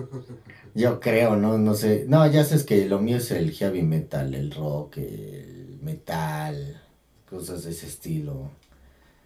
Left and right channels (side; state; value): both; identical; correlation 1.00